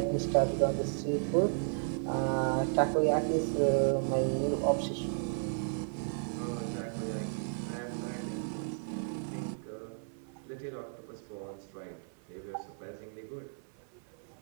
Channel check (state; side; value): silent; left; 55 dB below the other